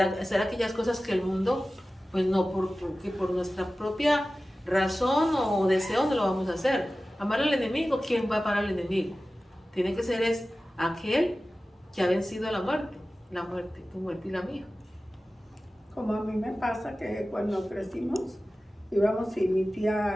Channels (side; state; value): both; normal; correlation 0.96